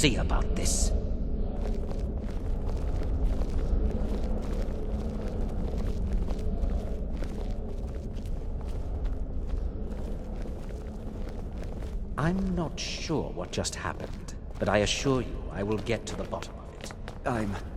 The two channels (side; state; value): both; identical; correlation 1.00